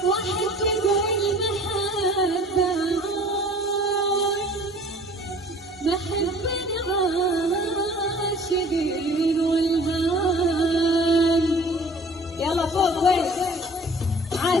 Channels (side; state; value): both; normal; correlation 0.49